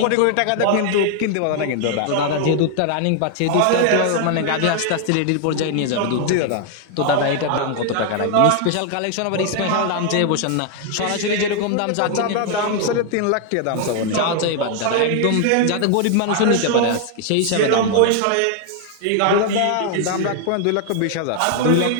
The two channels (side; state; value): both; different; correlation 0.00